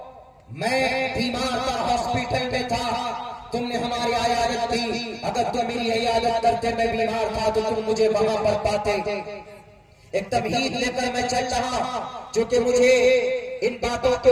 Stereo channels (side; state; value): both; identical; correlation 1.00